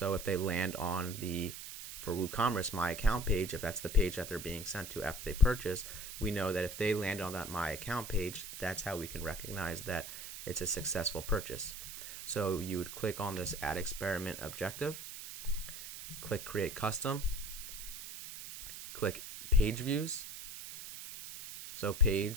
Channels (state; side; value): noise; right; hiss, 10 dB below the sound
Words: if they land on for WooCommerce My Account page, if that's the page that they're being sent to after they purchase, we know that if they land on that My Account page, that's how we can recognize that it's a successful purchase. So you would click on this Add Experiment Objective, click Create Custom, click Page Views. So